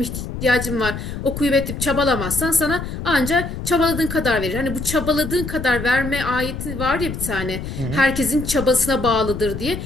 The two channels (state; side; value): noise; left; rumble, 7 dB below the sound